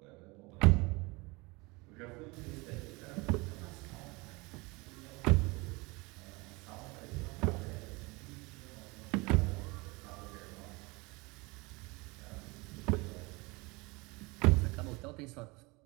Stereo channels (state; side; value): quieter; left; 25.5 dB